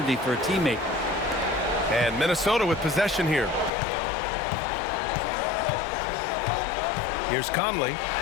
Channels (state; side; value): drops out; right; at 3.7 s